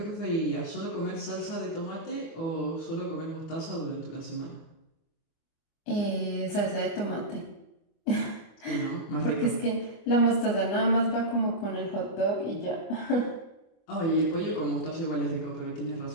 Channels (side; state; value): right; late; 24 ms